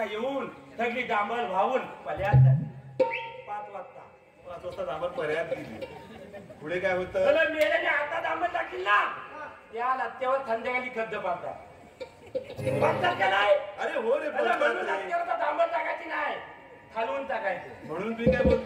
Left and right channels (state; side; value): identical; both; correlation 1.00